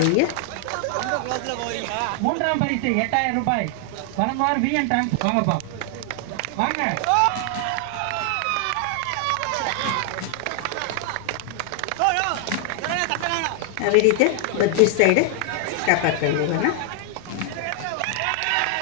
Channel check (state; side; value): different; both; correlation 0.00